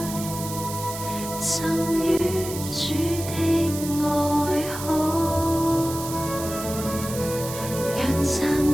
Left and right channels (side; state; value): right; noise; hiss, 9 dB below the sound